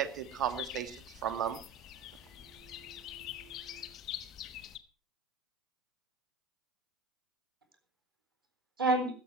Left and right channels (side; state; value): left; quieter; 3.1 dB